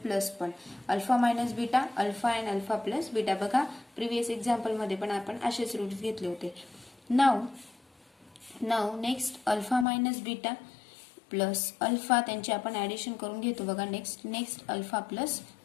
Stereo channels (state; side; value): drops out; right; at 9.9 s